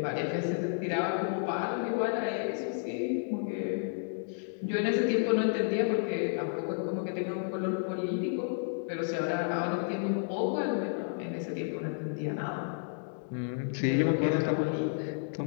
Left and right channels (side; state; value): right; silent; digital silence